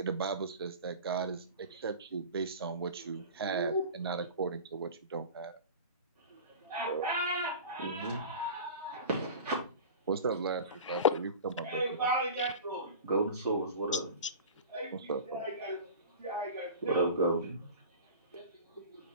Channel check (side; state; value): both; inverted; correlation -0.35